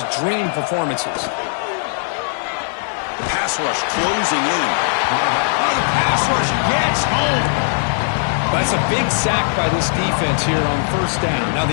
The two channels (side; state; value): right; silent; digital silence